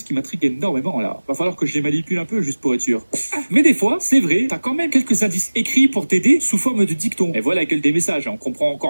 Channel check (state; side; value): inverted; both; correlation -1.00